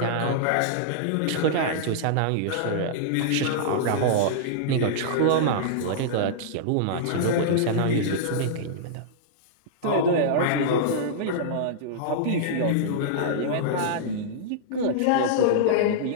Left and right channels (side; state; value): both; different; correlation -0.02